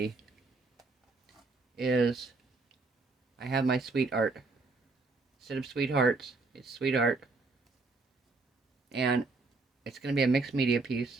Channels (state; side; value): quieter; left; 3.7 dB